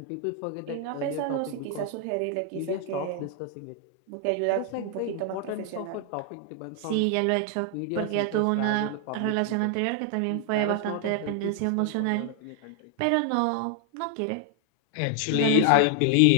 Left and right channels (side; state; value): both; different; correlation 0.00